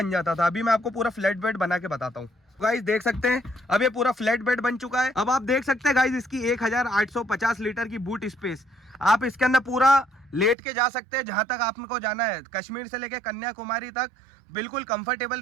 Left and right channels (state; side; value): drops out; left; at 10.6 s